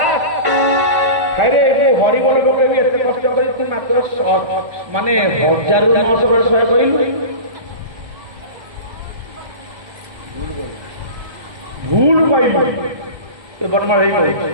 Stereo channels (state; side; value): late; left; 1.2 ms